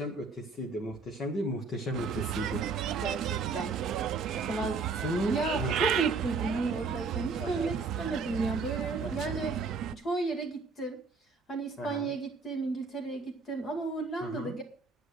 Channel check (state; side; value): quieter; left; 4.3 dB